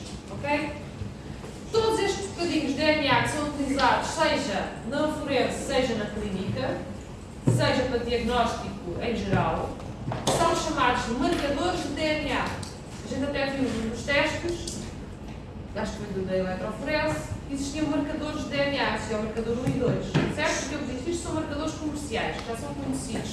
Okay? Todos estes bocadinhos de DNA que são utilizados, seja na forense, seja na clínica, seja para diagnóstico em geral, são chamados de marcadores de DNA. A gente até viu nos testes, acho que foi da eletroforese, existiam marcadores de DNA, existia o marcador 1 e 2, certo? Porque eu disse, isto são marcadores comerciais, que já são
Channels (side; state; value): both; identical; correlation 1.00